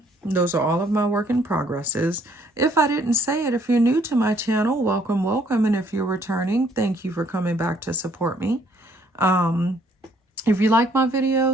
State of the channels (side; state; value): both; normal; correlation 0.65